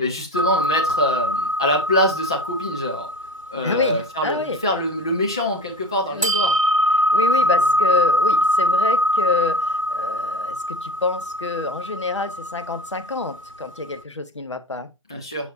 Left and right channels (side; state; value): both; normal; correlation 0.32